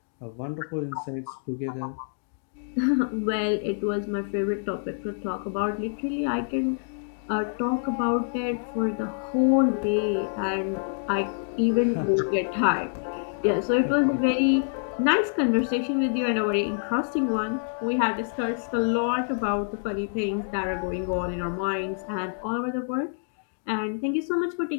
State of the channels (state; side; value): silent; right; digital silence